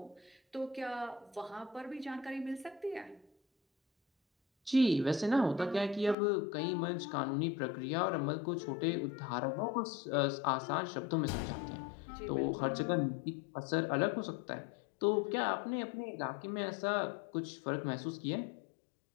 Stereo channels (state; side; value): drops out; right; at 6.2 s